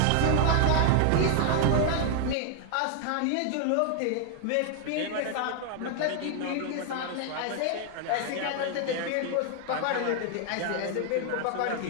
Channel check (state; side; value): different; both; correlation 0.00